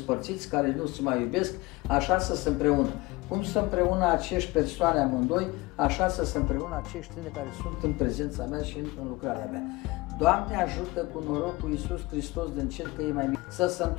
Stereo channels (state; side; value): quieter; right; 22.3 dB